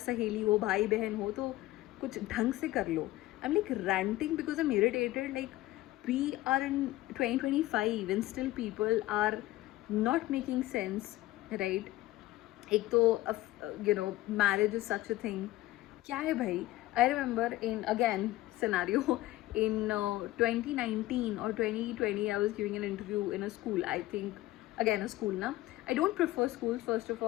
हो, भाई बहन हो, तो कुछ ढंग से कर लो. I'm like ranting because I'm irritated. Like, we are in 2025 and still people are not making sense, right? एक तो marriage is such a thing. क्या है भाई? I remember in again scenario in 2019 or 2020, I was giving an interview in a school. I think again a school na. I don't prefer schools, first of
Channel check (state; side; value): quieter; right; 16.9 dB